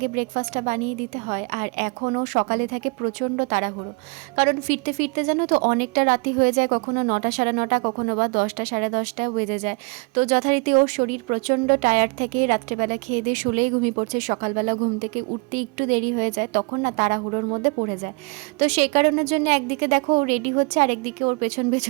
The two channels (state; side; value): quieter; left; 31.0 dB